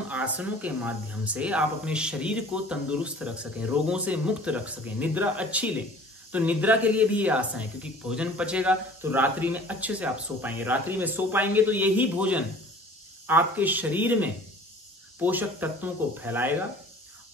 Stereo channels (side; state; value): both; normal; correlation 0.47